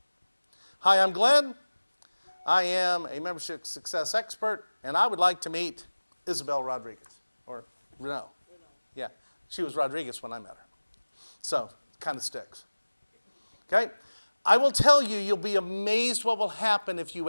Hi, I'm Glenn. I am a membership success expert, and I would like to meet Isabel Rodriguez, or Renault. Yeah, she was Rodriguez when I met her. So, kind of sticks. Okay? I will tell you, you'll be amazed what will happen if you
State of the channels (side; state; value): both; inverted; correlation -1.00